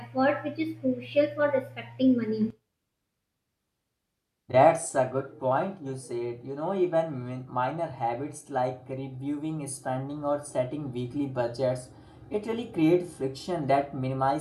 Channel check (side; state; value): both; identical; correlation 1.00